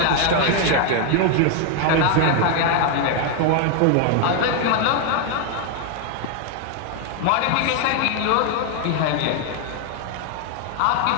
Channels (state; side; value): different; both; correlation 0.01